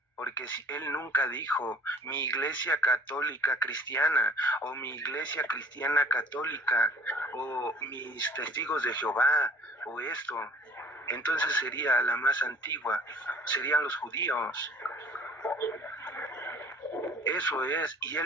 Porque si él nunca dijo mi iglesia católica cristiana o mi iglesia cristiana católica o mis testigos de Jehová o esto, entonces sería la más antigua, serían los judíos. Eso es, y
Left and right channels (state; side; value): normal; both; correlation 0.50